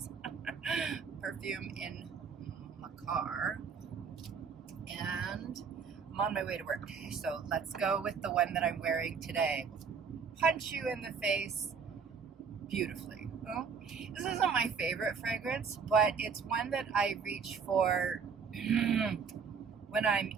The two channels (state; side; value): quieter; left; 6.0 dB